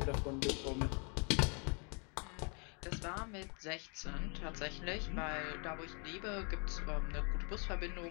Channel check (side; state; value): right; quieter; 35.6 dB